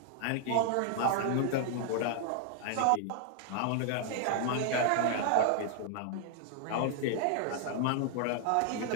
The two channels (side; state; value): both; different; correlation 0.00